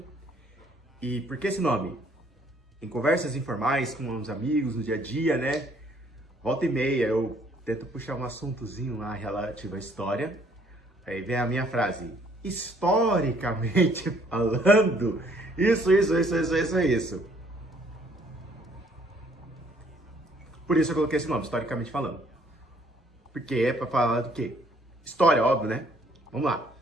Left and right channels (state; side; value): normal; both; correlation 0.63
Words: E por que esse nome? Em conversas informais com uns amigos no dia a dia, né? Volta e meia eu tento puxar um assuntozinho lá relativo à história. Aí vem a minha frase, historicamente falando, isso. Por isso eu coloquei esse nome, historicamente falando. Porque é pra falar do quê? História, óbvio, né? Vamos lá.